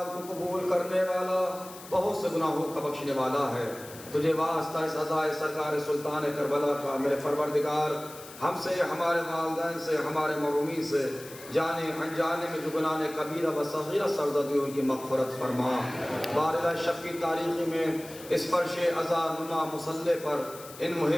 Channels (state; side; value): noise; left; hiss, 17 dB below the sound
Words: کو قبول کرنے والا، بہت سے گناہوں کا بخشنے والا ہے۔ تجھے واسطہ اس عزائے سرکار سلطان کربلا کا میرے پروردگار ہم سے، ہمارے والدین سے، ہمارے محرومین سے، جانے انجانے میں جو گناہ کبیرہ و صغیرہ سرزدی ان کی مغفرت فرما۔ بارگاہ شب کی تاریخی میں اس فرش عزا نما مصلی پر ان